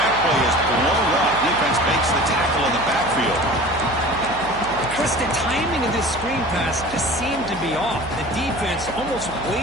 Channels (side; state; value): right; noise; hum, 15 dB below the sound